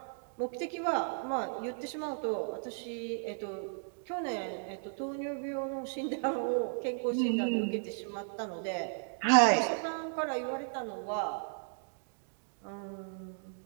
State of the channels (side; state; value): left; silent; digital silence